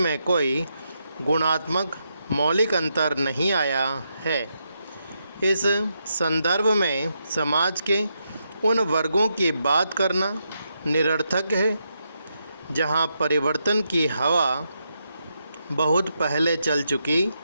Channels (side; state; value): both; inverted; correlation -0.82